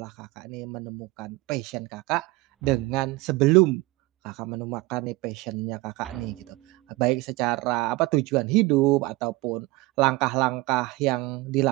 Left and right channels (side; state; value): left; quieter; 21.5 dB